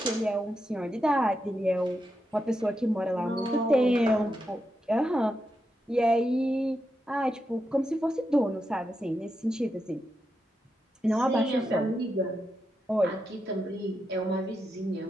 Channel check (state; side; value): normal; both; correlation 0.86